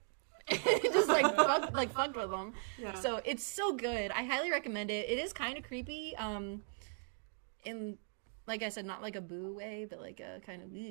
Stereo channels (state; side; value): silent; left; 52 dB below the other